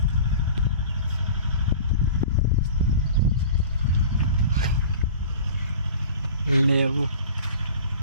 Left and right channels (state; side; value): inverted; both; correlation -0.39